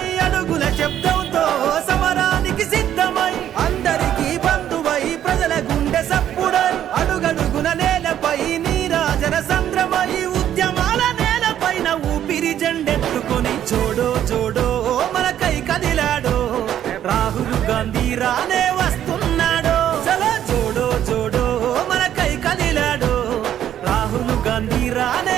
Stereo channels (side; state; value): left; quieter; 10.8 dB